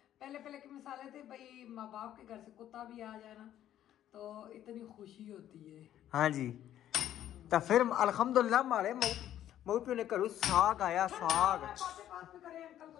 पहले पहले के मिसाले थे भाई, माँ बाप के घर से कुत्ता भी आ जाए ना तो इतनी खुशी होती है। हाँ जी, तो फिर अल्हम्दुलिल्लाह मारे मऊ पे ने करू साग आया, साग। पास में करे, अंकल को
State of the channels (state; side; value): quieter; right; 11.6 dB